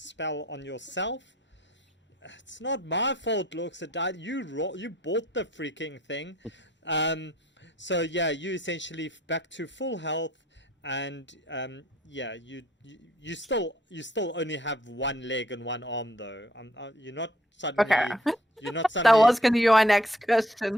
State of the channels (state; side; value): normal; both; correlation 0.62